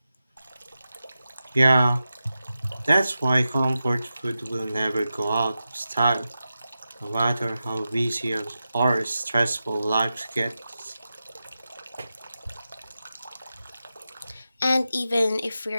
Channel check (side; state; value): both; inverted; correlation -0.92